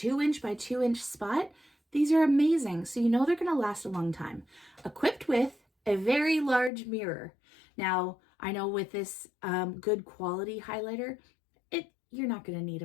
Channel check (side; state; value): right; drops out; at 6.7 s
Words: by 2-inch spot? These are amazing. So you know they're going to last a long time. Equipped with a very large mirror. Now, I know with this good quality highlighter, you're not going to need